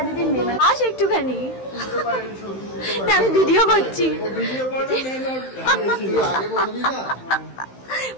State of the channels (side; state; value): right; late; 15 ms